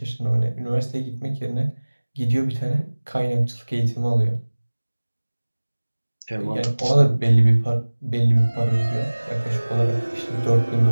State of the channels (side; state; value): both; inverted; correlation -1.00